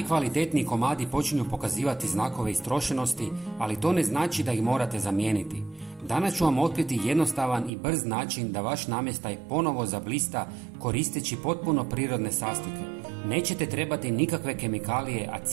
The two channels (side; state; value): left; drops out; at 7.7 s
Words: komadi počinju pokazivati znakove istrošenosti, ali to ne znači da ih morate zamijeniti. Danas ću vam otkriti jednostavan i brz način da vaš namještaj ponovo zablista koristeći potpuno prirodne sastojke. Nećete trebati nikakve kemikalije, a